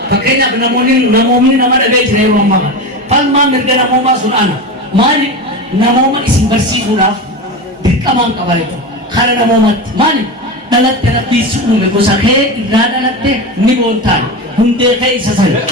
Fakenya namoonni nama dhaga'ee jira yeroo ammaa falmaa mirga namoomaa sun ana maali namooma isin barsiisuudhaaf dirqamaan qaba jechuudha. Kara namoomatti maali dhalatte rabbii si uume gosa kee irraa dhalatte ni boontaan hundee kee isa sana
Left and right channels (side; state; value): both; normal; correlation 0.22